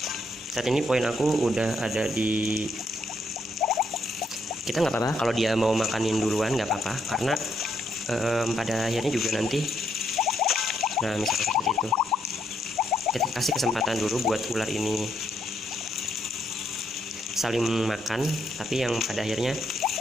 Saat ini poin aku udah ada di, kita nggak apa-apa kalau dia mau makanin duluan, nggak apa-apa, karena pada akhirnya juga nanti, nah misalnya seperti itu, kita kasih kesempatan dulu buat ular ini saling makan, tapi yang pada akhirnya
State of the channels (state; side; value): normal; both; correlation 0.76